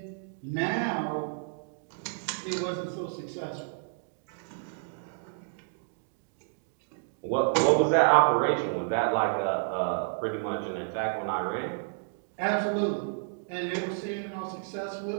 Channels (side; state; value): left; silent; digital silence